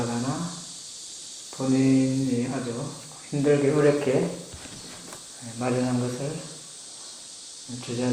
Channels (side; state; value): both; identical; correlation 1.00